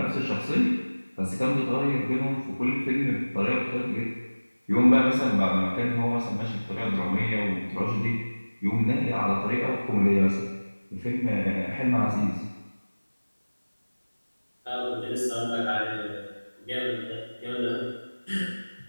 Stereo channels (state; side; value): inverted; both; correlation -1.00